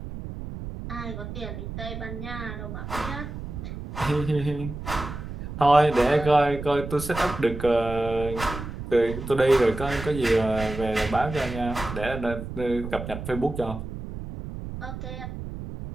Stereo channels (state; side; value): noise; right; rumble, 8 dB below the sound